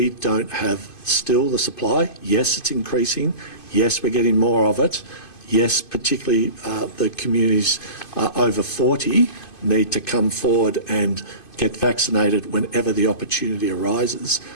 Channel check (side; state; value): right; late; 2.5 ms